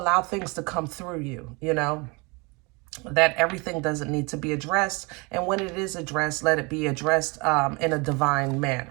things to come through you, you know, that everything doesn't need to be addressed. And when it is addressed, let it be addressed in a divine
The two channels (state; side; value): quieter; left; 28.2 dB